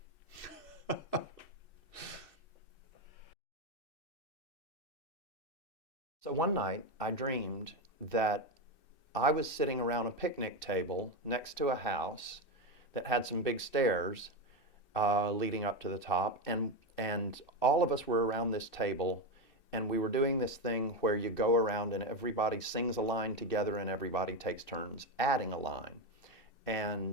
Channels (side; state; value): right; late; 2.6 ms